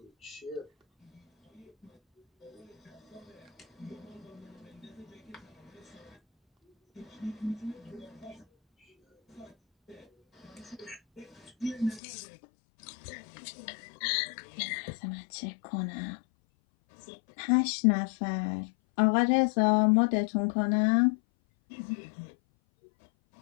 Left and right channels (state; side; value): drops out; right; at 12.0 s